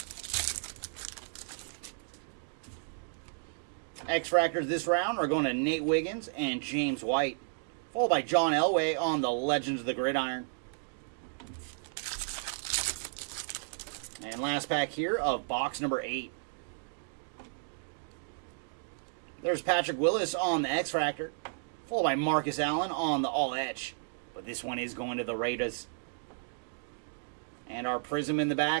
X-Fractors this round are going to Nate Wiggins and James White, followed by John Elway on the Legends of the Gridiron. And last pack here of box number 8. There's Patrick Willis on the X-Fractor, followed by Marcus Allen on the All-Etch. But this one is going to the Raiders. And our Prism in the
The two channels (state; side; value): silent; left; digital silence